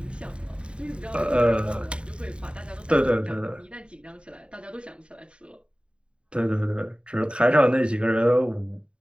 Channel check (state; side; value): late; left; 0.054 ms